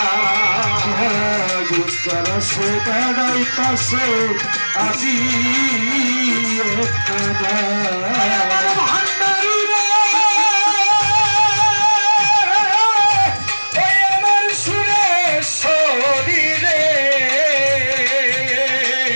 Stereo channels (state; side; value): inverted; both; correlation -1.00